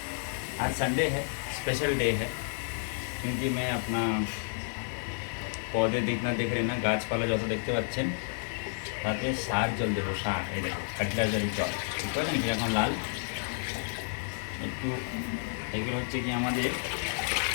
आज Sunday है, special day है क्योंकि मैं अपना पौधे देखना देख रहे ना গাছপালা যত দেখতে পাচ্ছেন তাতে সার জল দেবো। সার এই দেখো ফার্টিলাইজারের জল বুঝতে পারলেন কি এখন লাল একটু এগুলো হচ্ছে কি আমাদের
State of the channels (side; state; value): right; silent; digital silence